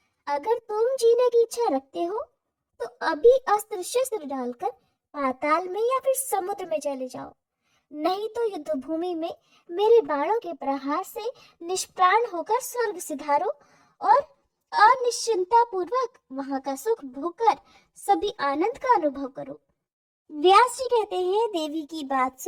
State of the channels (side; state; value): both; identical; correlation 1.00